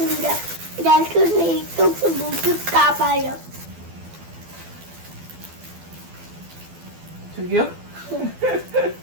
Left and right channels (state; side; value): late; left; 12 ms